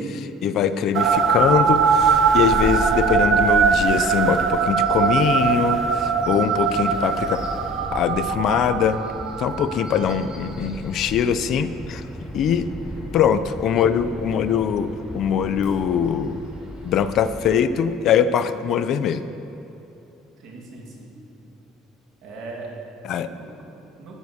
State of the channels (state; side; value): normal; both; correlation 0.42